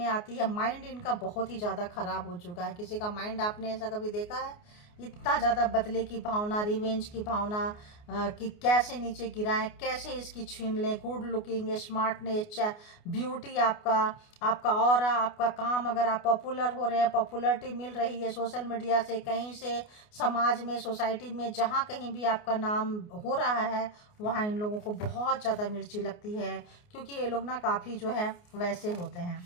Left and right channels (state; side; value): late; right; 29 ms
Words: आती है। माइंड इनका बहुत ही ज़्यादा ख़राब हो चुका है। किसी का माइंड आपने ऐसा कभी देखा है? इतना ज़्यादा बदले की भावना, रिवेंज की भावना, कि कैसे नीचे गिराएं, कैसे इसकी छीन लें। गुड लुकिंग, स्मार्टनेस, ब्यूटी, आपका ऑरा, आपका काम, अगर आप पॉपुलर हो रहे हैं, पॉपुलरिटी मिल रही है सोशल मीडिया से, कहीं से, समाज में, सोसाइटी में, जहाँ कहीं भी आपका नाम हो रहा है वहाँ इन लोगों को बहुत ज़्यादा मिर्ची लगती है। क्योंकि ये लोग ना काफ़ी जो है वैसे होते